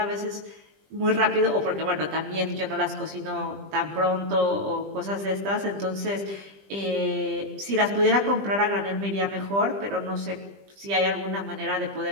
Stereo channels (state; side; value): late; left; 20 ms